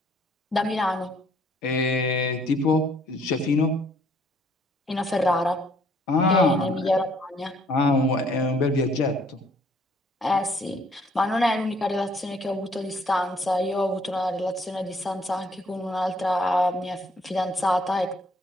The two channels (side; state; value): both; normal; correlation 0.64